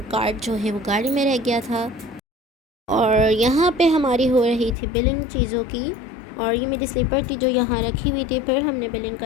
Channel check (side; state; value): right; drops out; at 4.8 s